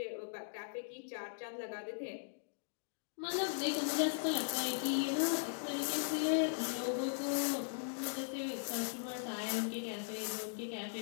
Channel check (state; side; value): silent; right; digital silence